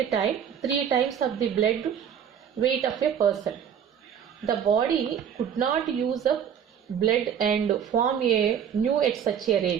time, 3 times of the blood weight of a person. The body could not use up blood and form a new at such a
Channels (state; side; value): quieter; left; 8.4 dB